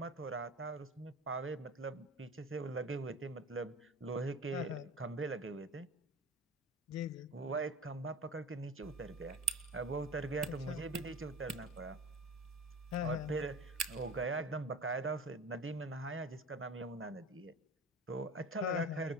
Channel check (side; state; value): both; normal; correlation 0.35